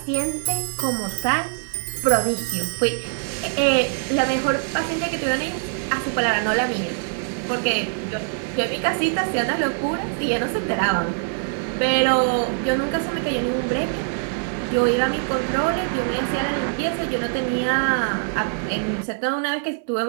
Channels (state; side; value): silent; left; digital silence